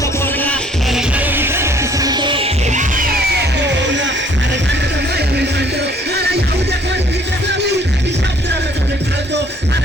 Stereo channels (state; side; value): normal; both; correlation 0.59